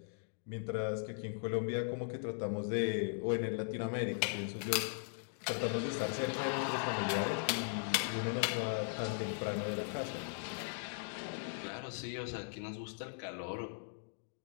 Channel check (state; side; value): silent; right; digital silence